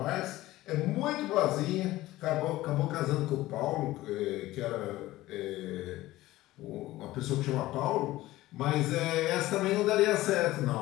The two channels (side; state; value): right; quieter; 16.9 dB